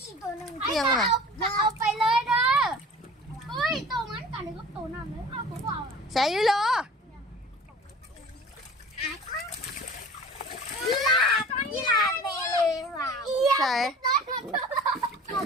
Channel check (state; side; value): normal; both; correlation 0.42